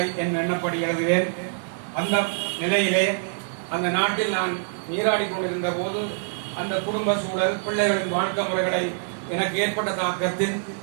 என் எண்ணப்படி எழுதுவேன். அந்த நிலையிலே அந்த நாட்டில் நான் நீராடி கொண்டிருந்த போது அந்த குடும்ப சூழல், பிள்ளைகளின் வாழ்க்கை முறைகளை எனக்கு ஏற்பட்ட தாக்கத்தில்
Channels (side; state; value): left; silent; digital silence